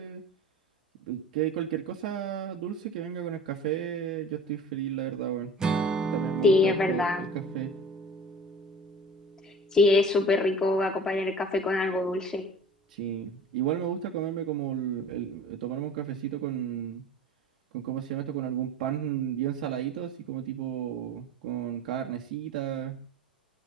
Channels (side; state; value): both; normal; correlation 0.41